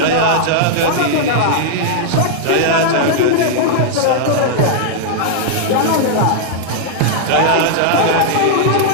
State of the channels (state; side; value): different; both; correlation -0.01